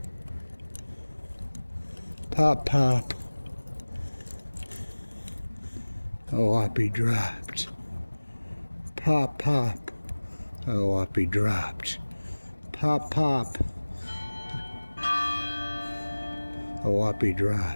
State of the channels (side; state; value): both; inverted; correlation -1.00